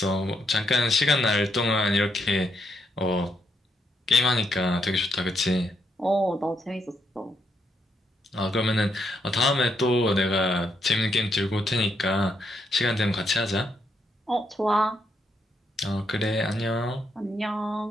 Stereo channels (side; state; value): both; normal; correlation 0.78